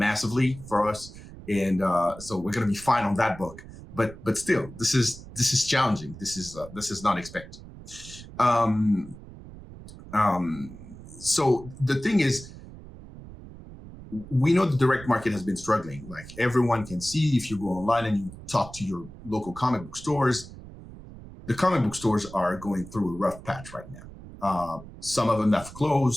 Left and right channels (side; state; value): right; noise; rumble, 16 dB below the sound